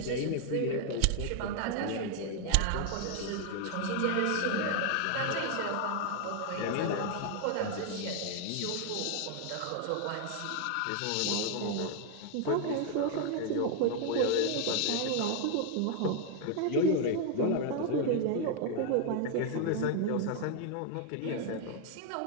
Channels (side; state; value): both; different; correlation 0.00